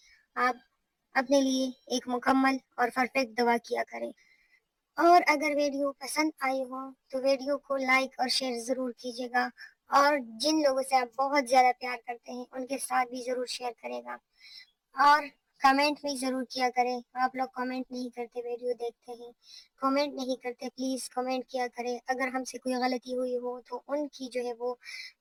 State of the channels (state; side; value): identical; both; correlation 1.00